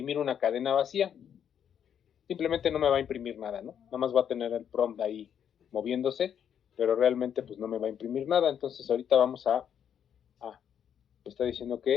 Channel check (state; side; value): quieter; right; 8.7 dB